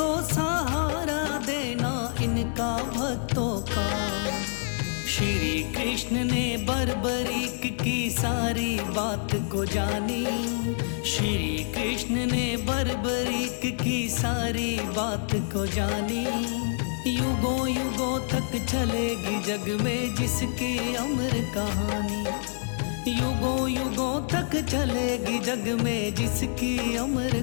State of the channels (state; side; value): silent; right; 60 dB below the other